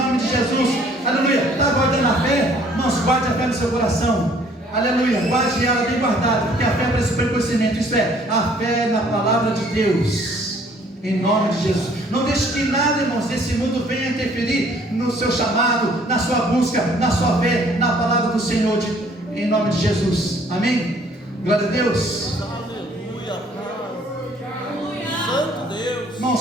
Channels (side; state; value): both; normal; correlation 0.59